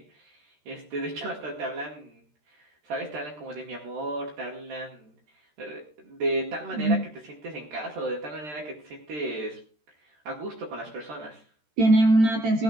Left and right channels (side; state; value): left; late; 13 ms